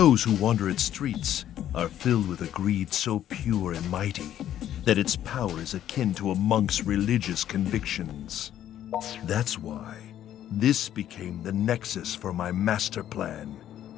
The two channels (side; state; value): right; quieter; 11.3 dB